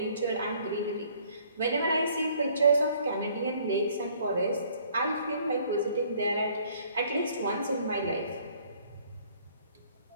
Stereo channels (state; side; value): inverted; both; correlation -0.60